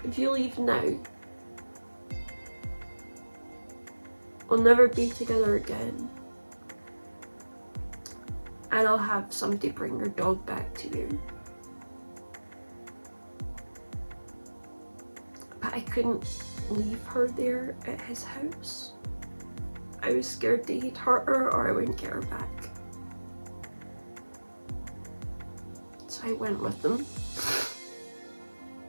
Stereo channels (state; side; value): inverted; both; correlation -1.00